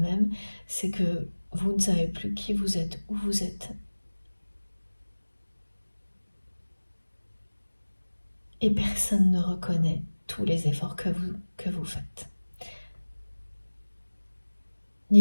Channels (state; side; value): inverted; both; correlation -1.00